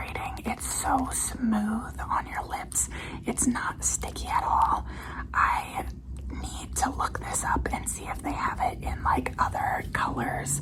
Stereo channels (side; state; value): both; identical; correlation 1.00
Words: It's so smooth on your lips. It's not sticky at all. I need to look this up and see if they have it in like other colors.